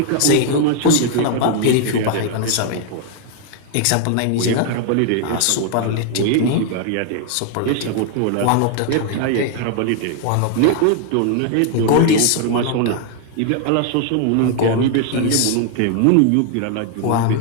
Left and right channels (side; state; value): both; different; correlation 0.00